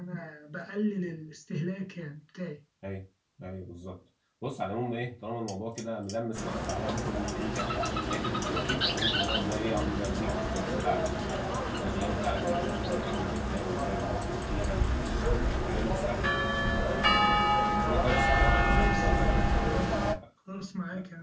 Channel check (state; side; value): identical; both; correlation 1.00